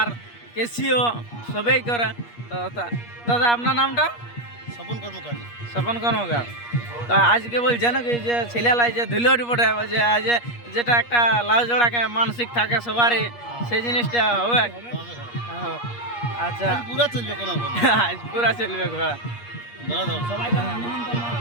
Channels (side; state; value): right; late; 8.4 ms